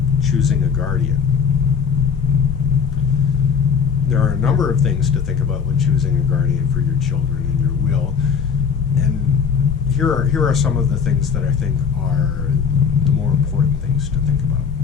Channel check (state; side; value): quieter; right; 6.5 dB